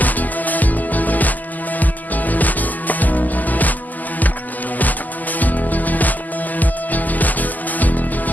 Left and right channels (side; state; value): right; late; 0.082 ms